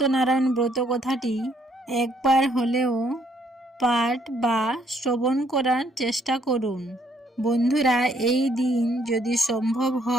ব্রত কথাটি একবার হলেও পাঠ বা শ্রবণ করার চেষ্টা করুন। বন্ধুরা, এই দিন যদি সম্ভব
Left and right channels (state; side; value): normal; both; correlation 0.68